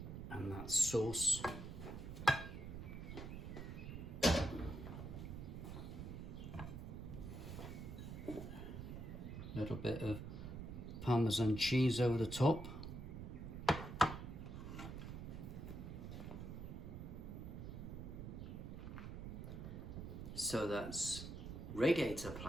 And that sauce. Little bit of Parmesan cheese over the top. So that's radiator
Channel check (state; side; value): noise; right; rumble, 7 dB below the sound